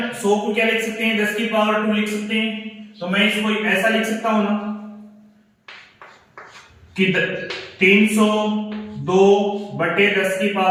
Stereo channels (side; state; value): both; identical; correlation 1.00